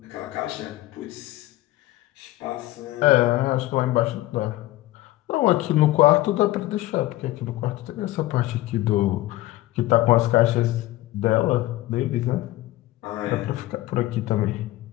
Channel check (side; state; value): right; quieter; 16.9 dB